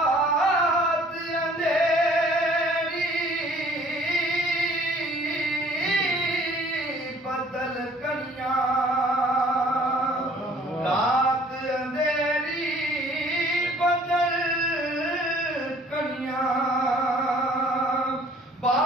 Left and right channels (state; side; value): normal; both; correlation 0.55